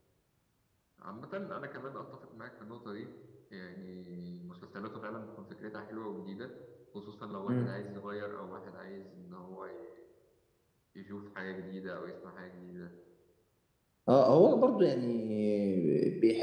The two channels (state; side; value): identical; both; correlation 1.00